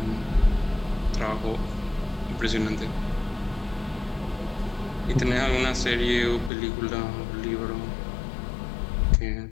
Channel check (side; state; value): right; drops out; at 6.5 s